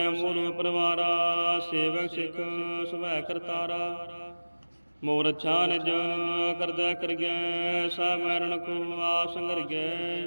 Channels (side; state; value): both; inverted; correlation -1.00